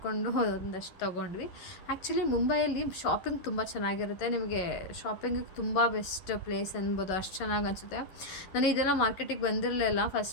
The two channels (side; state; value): right; late; 11 ms